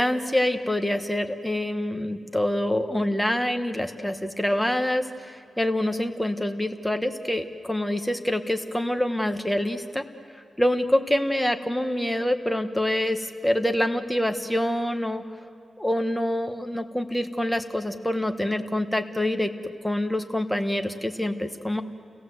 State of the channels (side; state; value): both; normal; correlation 0.96